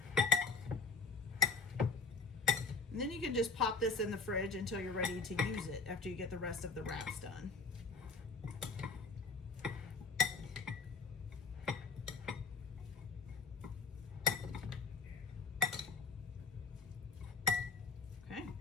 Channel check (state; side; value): quieter; right; 4.3 dB